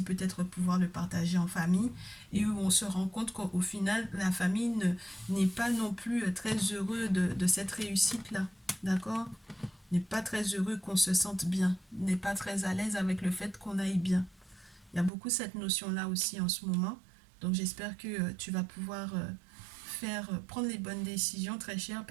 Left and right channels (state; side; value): drops out; left; at 15.1 s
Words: peut-être pouvoir le partager en famille et où on se rend compte qu'au final, la famille n'est pas non plus très heureux de cette réussite-là. D'accord? N'est pas très heureux qu'on se sente bien, n'est pas très à l'aise avec le fait qu'on aille bien. Il y a beaucoup cette notion-là aussi en ce moment. Donc j'espère que tu vas pouvoir prendre les bonnes décisions, très cher,